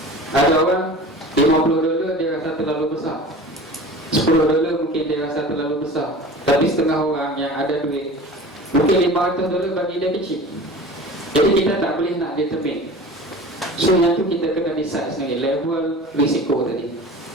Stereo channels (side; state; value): both; normal; correlation 0.38